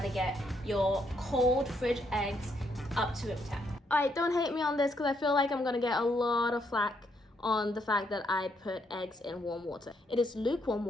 get your cold fridge eggs up to room temp. Alright, don't hate me on this because I feel like I'm gonna get a lot of flack on the fact that I put eggs in warm water. It is lukewarm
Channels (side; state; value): both; normal; correlation 0.75